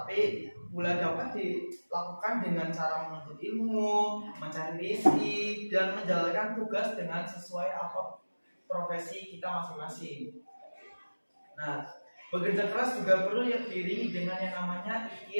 pula dapat dilakukan dengan cara menuntut ilmu, mencari rezeki, dan menjalankan tugas dengan sesuai apa profesi kita masing-masing. Nah, bekerja keras juga perlu diiringi dengan yang namanya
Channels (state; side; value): inverted; both; correlation -1.00